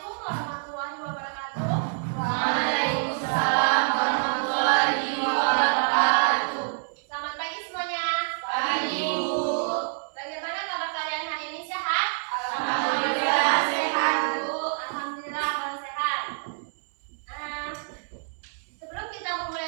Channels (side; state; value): left; silent; digital silence